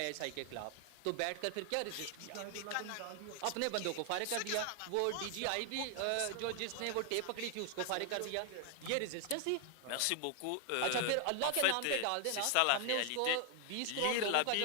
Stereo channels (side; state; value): both; different; correlation 0.00